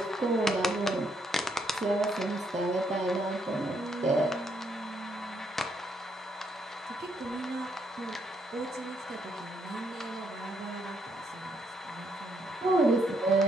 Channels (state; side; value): normal; both; correlation 0.73